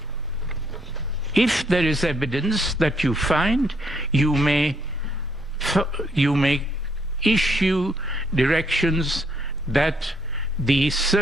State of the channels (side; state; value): both; normal; correlation 0.70